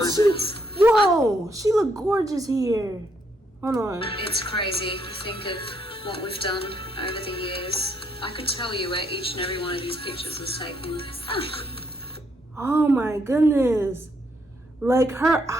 Whoa, she looked gorgeous here. Hold on. It's crazy to think of what we've done over the years. I could tell you where each and every one of these pictures was taken. Oh my goodness. Like her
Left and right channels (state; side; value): normal; both; correlation 0.74